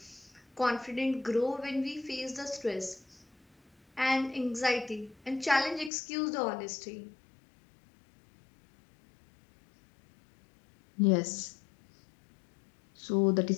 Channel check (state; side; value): drops out; right; at 5.9 s